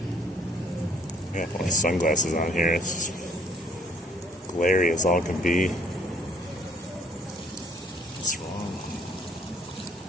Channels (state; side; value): normal; both; correlation 0.62